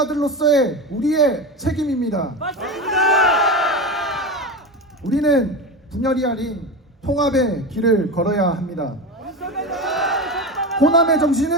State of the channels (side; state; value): both; normal; correlation 0.22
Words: 우리의 책임입니다. 우리는 분열이 아닌 통합의 길을 걸어야 합니다. 호남의